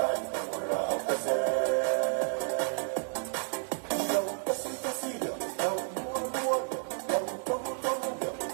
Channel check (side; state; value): left; silent; digital silence